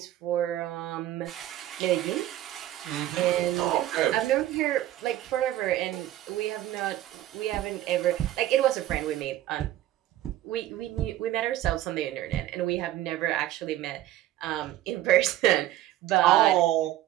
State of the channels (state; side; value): quieter; left; 13.7 dB